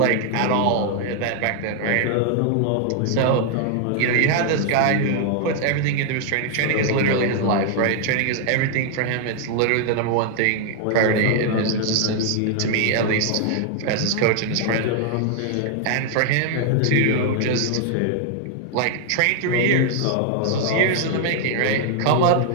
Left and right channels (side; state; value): both; different; correlation 0.00